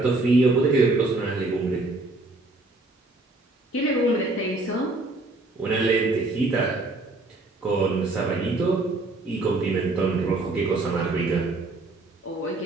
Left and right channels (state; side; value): quieter; left; 3.1 dB